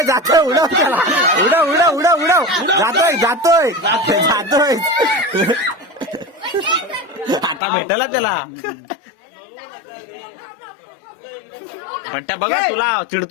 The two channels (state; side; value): drops out; right; at 7.6 s